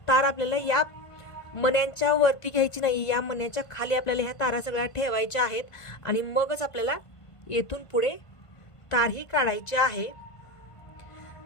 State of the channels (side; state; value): right; late; 1.5 ms